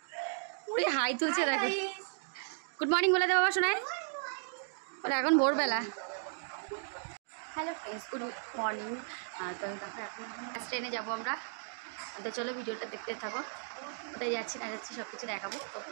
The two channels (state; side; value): silent; left; digital silence